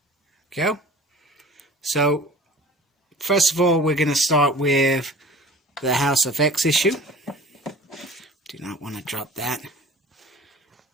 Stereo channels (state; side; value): normal; both; correlation 0.44